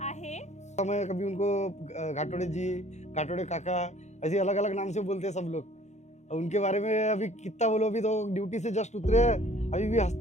आहे. मैं कभी उनको घाटोड़े जी, घाटोड़े काका ऐसे अलग अलग नाम से बोलते हैं सब लोग। उनके बारे में अभी कितना बोलो, अभी तो ड्यूटी से जस्ट उतरे हैं, अभी भी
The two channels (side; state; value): right; late; 0.33 ms